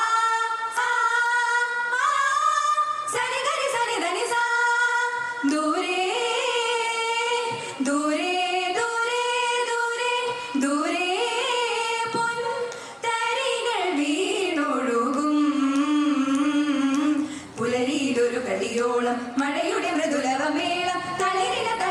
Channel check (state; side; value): identical; both; correlation 1.00